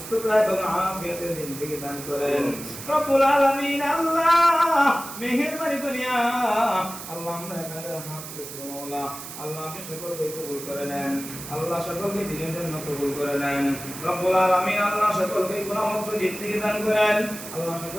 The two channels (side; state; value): right; noise; hiss, 11 dB below the sound